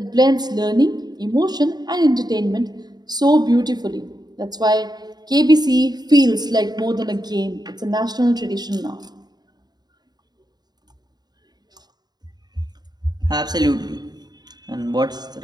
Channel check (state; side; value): late; left; 0.20 ms